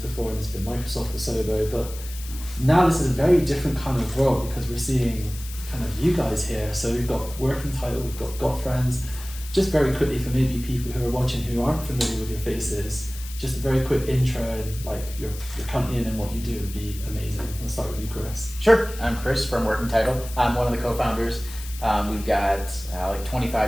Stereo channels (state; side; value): noise; left; hiss, 14 dB below the sound